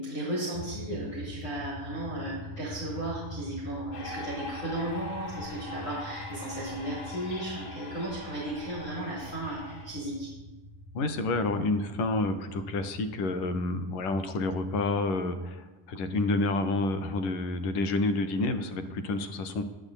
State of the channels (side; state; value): right; late; 11 ms